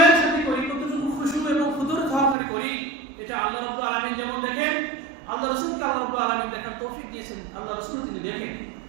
সাথে করি, কতটুকু খুশু এবং হুজুর সহকারে করি, এটা আল্লাহ রাব্বুল আলামিন যেমন দেখেন, আল্লাহ রাসূলকে আল্লাহ রাব্বুল আলামিন দেখার তৌফিক দিয়েছেন, আল্লাহ রাসূল তিনি দেখেন।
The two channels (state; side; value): drops out; left; at 2.4 s